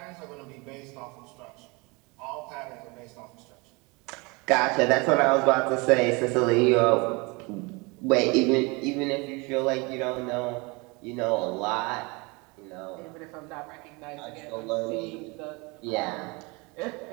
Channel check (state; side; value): quieter; left; 27.3 dB